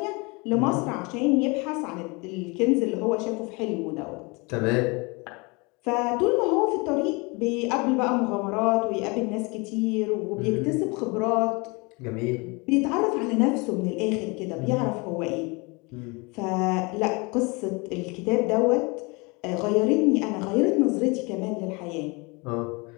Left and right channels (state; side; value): quieter; right; 28.1 dB